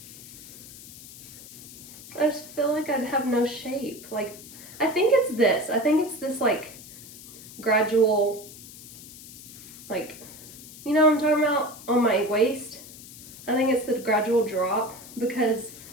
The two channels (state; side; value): noise; left; hiss, 16 dB below the sound